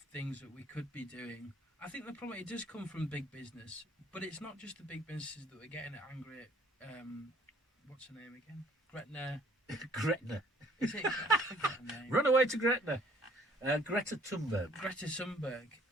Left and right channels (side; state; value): both; normal; correlation 0.59